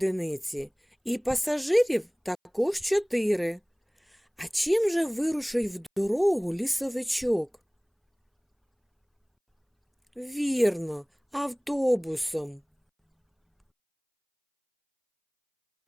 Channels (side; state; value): both; identical; correlation 1.00